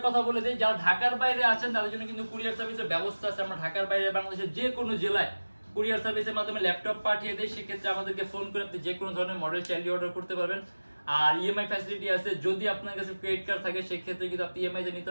কথা বলে দেই, যারা ঢাকার বাইরে আছেন তাদের জন্য কিন্তু কুরিয়ার সার্ভিসের ব্যবস্থা আছে। আমরা ঢাকার বাইরে বাংলাদেশের যে কোনো জেলায় কুরিয়ার সার্ভিসের মাধ্যমে ল্যাপটপ পাঠিয়ে দেই। সেক্ষেত্রে আমাদেরকে ফোন করে আপনি যে কোনো ধরনের মডেল চাইলে অর্ডার করতে পারবেন। আর ইএমআই ফ্যাসিলিটি আছে, যদি আপনার কাছে ক্রেডিট কার্ড থাকে সেক্ষেত্রে কিন্তু আপনি ইএমআই তে নিতে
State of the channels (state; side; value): inverted; both; correlation -1.00